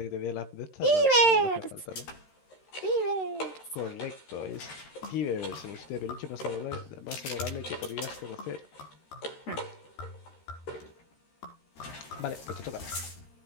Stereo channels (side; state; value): right; late; 13 ms